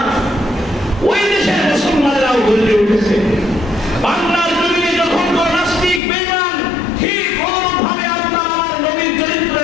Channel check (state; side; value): drops out; right; at 6.0 s